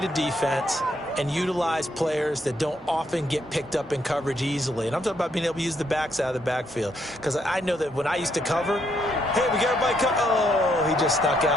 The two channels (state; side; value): normal; both; correlation 0.74